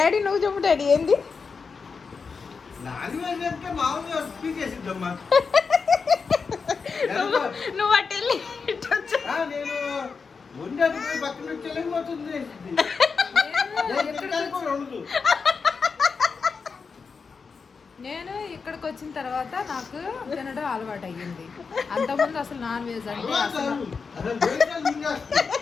నువ్వు చెప్పు డాడీ ఏంది నువ్వు అటు వెళ్ళి నేను ఇక్కడికి వచ్చిన తర్వాత నాకు తినడం అలవాటు అయ్యింది. అంతకుముందు అసలు నాన్ వెజ్ అంటే అసలు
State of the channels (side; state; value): right; quieter; 5.2 dB